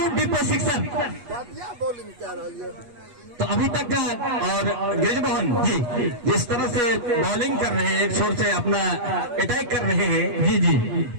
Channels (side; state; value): left; late; 8.3 ms